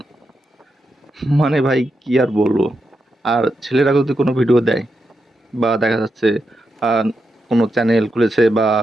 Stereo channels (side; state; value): both; normal; correlation 0.86